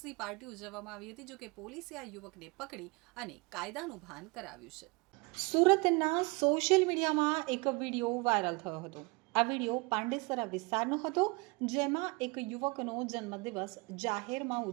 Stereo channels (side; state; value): left; quieter; 27.4 dB